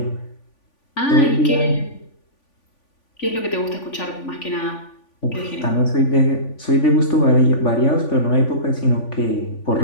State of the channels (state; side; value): late; right; 3.5 ms